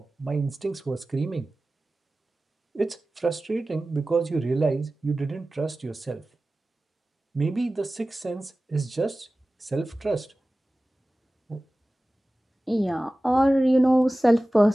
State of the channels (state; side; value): normal; both; correlation 0.96